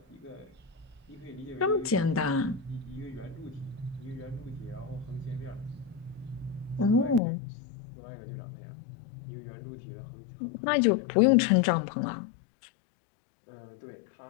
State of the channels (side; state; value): right; drops out; at 7.2 s